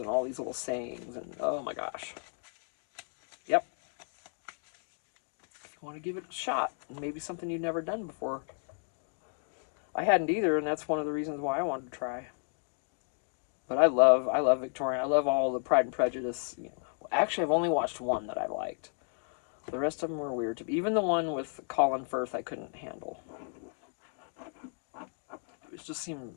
all these little sayings, and oh my gosh. Yep. If you want to give it a shot, and maybe something you've never done before. I hadn't either, and that's one of the reasons why I wanted to try. But I love Victorian. I love all the Pride and Prejudice. You know, actually, I've only watched one that I liked. The rest of them were weird to me. Even the one with Colin Firth, I couldn't handle. It just seemed,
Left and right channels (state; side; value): silent; right; 56 dB below the other